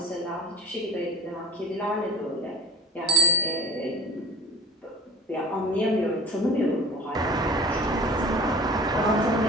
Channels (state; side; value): normal; both; correlation 0.40